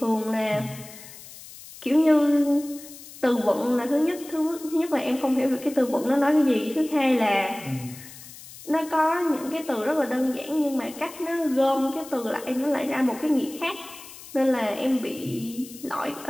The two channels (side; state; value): left; noise; hiss, 17 dB below the sound